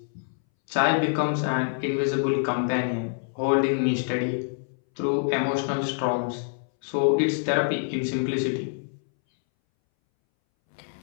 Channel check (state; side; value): silent; right; 61 dB below the other